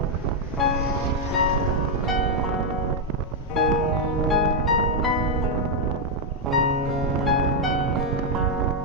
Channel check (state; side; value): normal; both; correlation 0.00